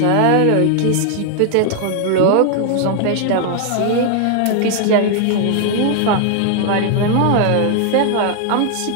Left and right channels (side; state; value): both; different; correlation 0.00